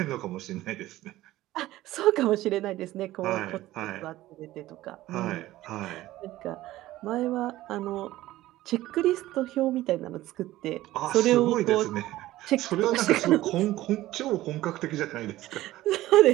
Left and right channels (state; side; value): quieter; left; 15.9 dB